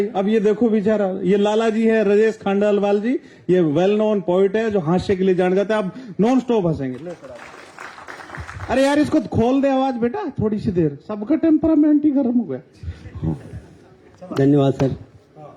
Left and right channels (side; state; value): both; identical; correlation 1.00